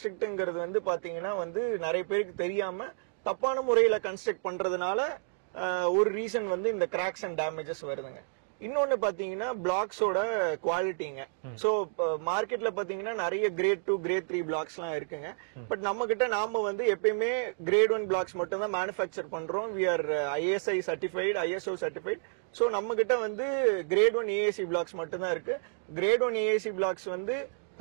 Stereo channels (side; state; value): left; silent; digital silence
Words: வந்து பாத்தீங்கன்னா வந்து நிறைய பேருக்கு தெரியாம தப்பான முறையில கன்ஸ்ட்ரக்ட் பண்றதுனால ஒரு ரீசன் வந்து இந்த கிராக்ஸ் அண்ட் டேமேஜஸ் வருதுங்க. இன்னொன்னு பாத்தீங்கன்னா பிளாக்ஸோட குவாலிட்டிங்க. சோ மார்க்கெட்ல பாத்தீங்கன்னா நிறைய கிரேட் 2, கிரேட் 3 பிளாக்ஸ் எல்லாம் இருக்குங்க. பட் நம்ம கிட்ட நாம வந்து எப்பயுமே கிரேட் 1 பிளாக்ஸ் மட்டும் தான் மேனுஃபேக்சர் பண்றோம். We are ISI certified, ISO certified. So நம்ம கிட்ட வந்து கிரேட் 1 ஏஏசி பிளாக்ஸ் மட்டும் தான் இருக்கு. கிரேட் 1 ஏஏசி பிளாக்ஸ் வந்து